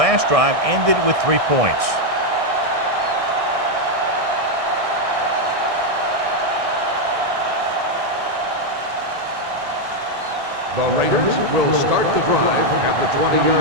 drive ended with 3 points.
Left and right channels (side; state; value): left; late; 1.6 ms